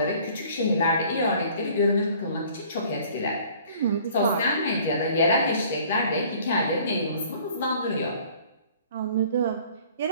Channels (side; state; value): both; inverted; correlation -0.53